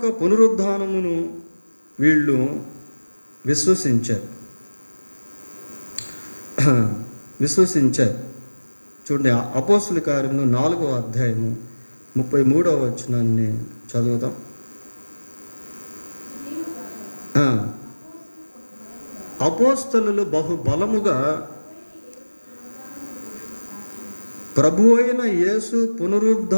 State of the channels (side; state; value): both; inverted; correlation -1.00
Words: పునరుద్ధానమును వీళ్ళు విశ్వసించారు. చూడండి, అపోస్తుల కార్యములు 4వ అధ్యాయము 33వ వచనాన్ని చదువుతాం. అపోస్తలులు బహుబలముగా ప్రభు అయిన యేసు